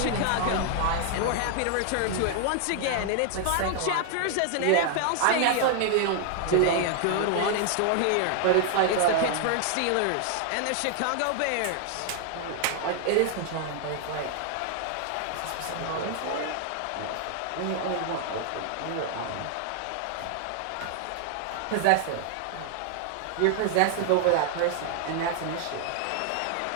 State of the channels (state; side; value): different; both; correlation 0.00